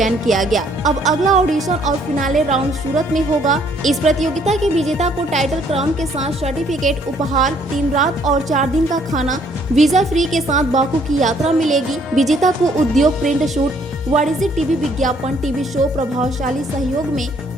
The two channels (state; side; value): normal; both; correlation 0.64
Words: किया गया। अब अगला ऑडिशन और फिनाले राउंड सूरत में होगा। इस प्रतियोगिता के विजेता को टाइटल क्राउन के साथ सर्टिफिकेट, उपहार, 3 रात और 4 दिन का खाना, वीजा फ्री के साथ बाकू की यात्रा मिलेगी। विजेता को उद्योग, प्रिंट शूट, वाणिज्यिक टीवी विज्ञापन, टीवी शो, प्रभावशाली सहयोग में